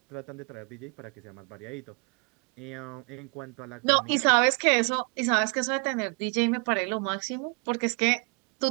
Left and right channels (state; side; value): quieter; left; 34.3 dB